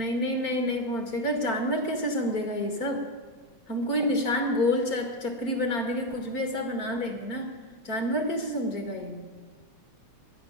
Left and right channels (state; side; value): late; right; 4.4 ms